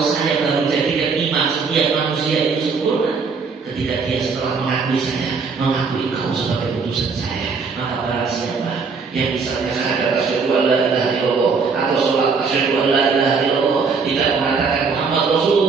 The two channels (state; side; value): quieter; left; 5.0 dB